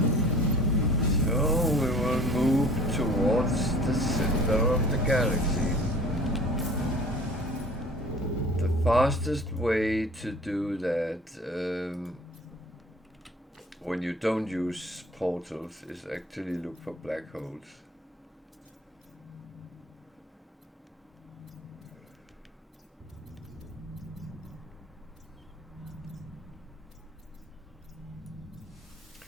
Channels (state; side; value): normal; both; correlation 0.47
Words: Galaxy. The fastest way to do that when you don't use portals is actually look for black holes.